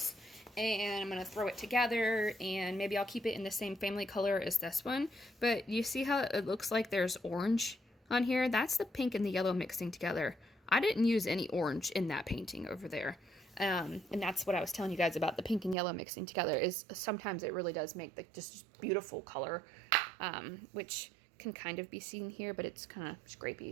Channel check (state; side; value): drops out; left; at 15.8 s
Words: and I'm going to throw it together, and maybe I'll keep it in the same family color as this one. But you see how it looks like there's orange on here? That's the pink and the yellow mixing together. I didn't use any orange in that painting over there. And that's what I was telling you guys about the pink and yellow mixing together, is sometimes it really does make like just beautiful color, which can kind of be seen here, but it's kind of